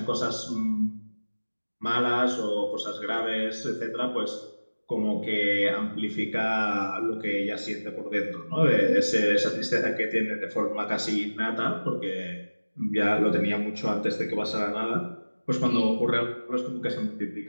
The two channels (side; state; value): both; inverted; correlation -1.00